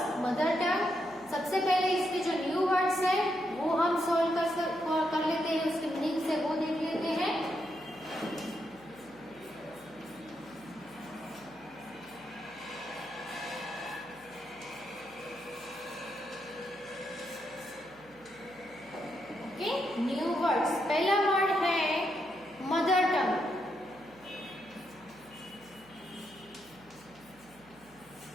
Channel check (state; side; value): noise; right; hum, 26 dB below the sound